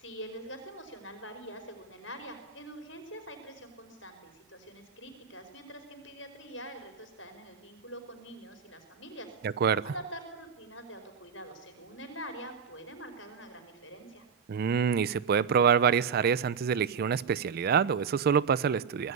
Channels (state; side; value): quieter; left; 6.4 dB